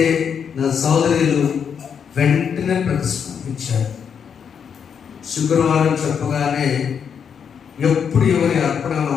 నా సోదరులు వెంటనే ప్రతిస్పందించారు. శుక్రవారం చెప్పగానే ఎప్పుడు ఎవరి అర్పణ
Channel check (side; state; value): right; quieter; 7.2 dB